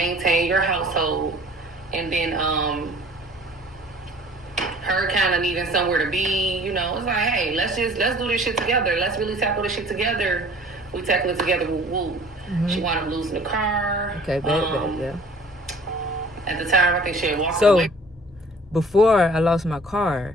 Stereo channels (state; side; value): normal; both; correlation 0.50